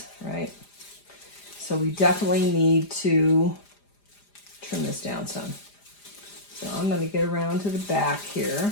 right? So we definitely need to trim this down some. So I'm going to get around to the back here.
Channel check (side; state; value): right; late; 4.9 ms